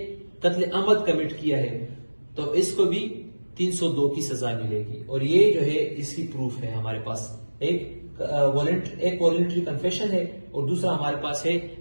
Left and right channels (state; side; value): inverted; both; correlation -1.00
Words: قتل عمد کمٹ کیا ہے تو اس کو بھی 302 کی سزا ملے گی. اور یہ جو ہے اس کی پروف ہے ہمارے پاس. ایک والنٹری کنفیشن ہے اور دوسرا ہمارے پاس ہے